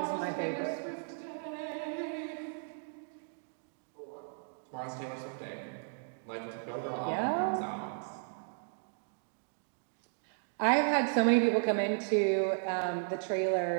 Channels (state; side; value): silent; left; digital silence